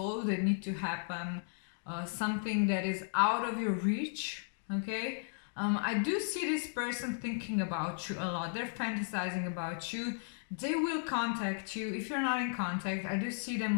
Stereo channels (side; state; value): right; silent; digital silence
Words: that need to happen, something that is out of your reach, okay? I do see this person thinking about you a lot. They're fantasizing about you. They will contact you. If you're not in contact, I do see them